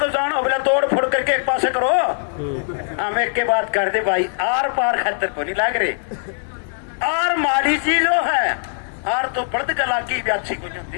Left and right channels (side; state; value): right; silent; digital silence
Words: जानो, बोले तोड़ फोड़ करके एक पासे करो। हम एक के बात कर दे भाई, आर पार खतर को नहीं लग रहे, आर माड़ी चीजों है, आर तो पर्द कला की भी अच्छी कुछ होती